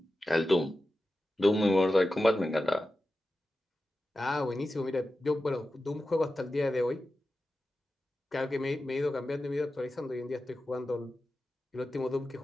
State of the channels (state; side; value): normal; both; correlation 0.93